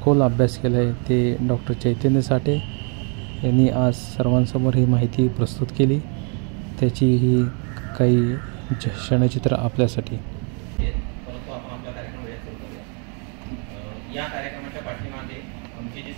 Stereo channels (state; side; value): quieter; left; 38.2 dB